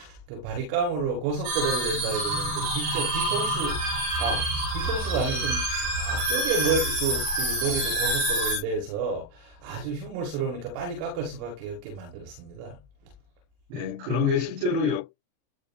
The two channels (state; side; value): late; left; 40 ms